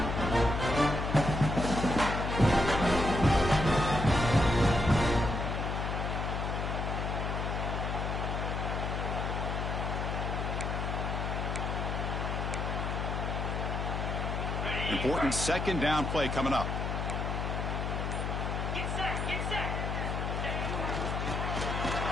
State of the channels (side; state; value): left; noise; hum, 2 dB below the sound